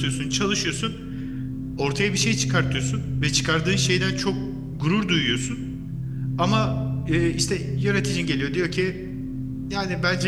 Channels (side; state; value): both; identical; correlation 1.00